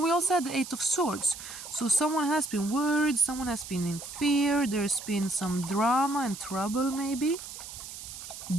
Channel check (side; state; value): right; noise; hiss, 11 dB below the sound